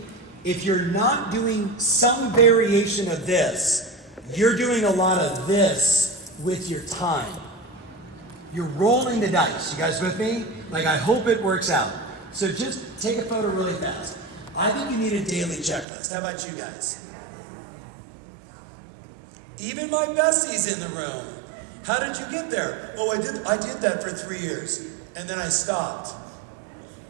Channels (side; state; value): left; drops out; at 15.9 s